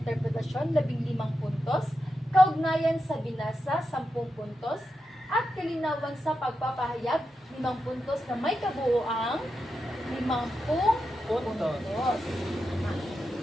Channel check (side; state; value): both; normal; correlation 0.88